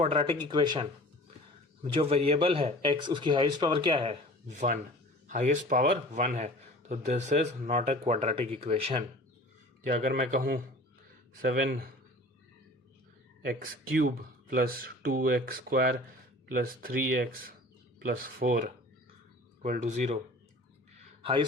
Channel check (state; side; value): normal; both; correlation 0.43